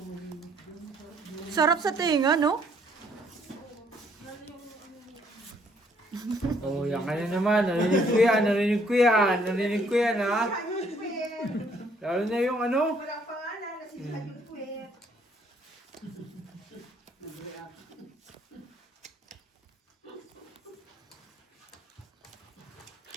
Sarap sa tinga, no? Oh, yan ka na naman. Narinig ko yan, narinig ko yan, narinig ko yan, ha? Lalo na yung ano? Walang pangalan na si Hayun Puwet.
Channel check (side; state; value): both; normal; correlation 0.65